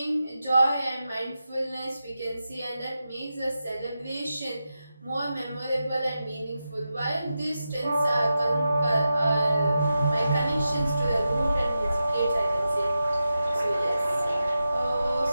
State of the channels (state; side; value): inverted; both; correlation -0.91